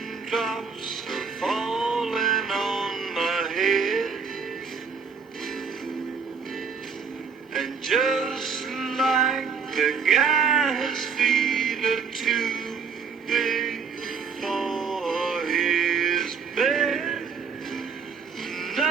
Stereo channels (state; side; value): quieter; left; 5.9 dB